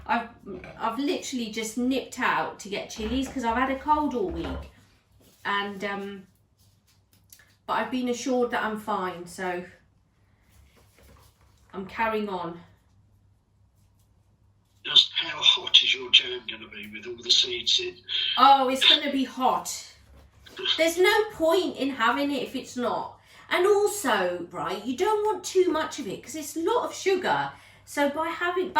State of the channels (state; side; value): identical; both; correlation 1.00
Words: I've literally just nipped out to get chilies because I've had a cold all week, and but I've been assured that I'm fine, so I'm carrying on. Just how hot is your jam going to be with all the seeds in? Oh, it's going to be hot. There's no point in having it if it's not. And also, right, you don't want too much of it because it's a lot of sugar. So by